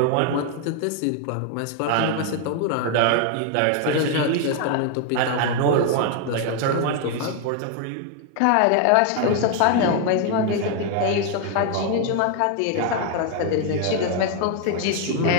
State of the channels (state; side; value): different; both; correlation 0.00